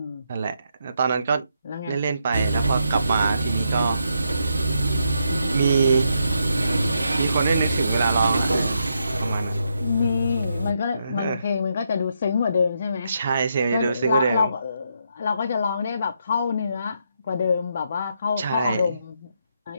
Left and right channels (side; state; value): both; inverted; correlation -0.79